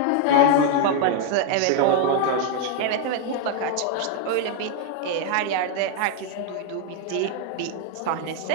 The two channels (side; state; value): both; different; correlation 0.00